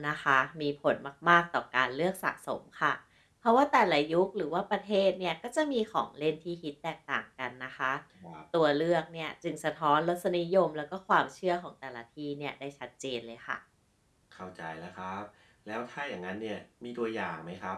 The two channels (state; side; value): identical; both; correlation 1.00